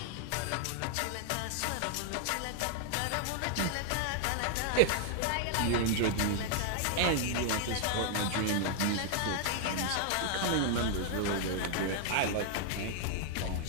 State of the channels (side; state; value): both; different; correlation 0.00